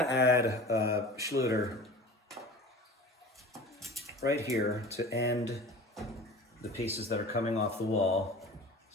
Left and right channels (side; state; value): both; normal; correlation 0.38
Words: add a Schluter right here to end the pieces that are coming off the wall.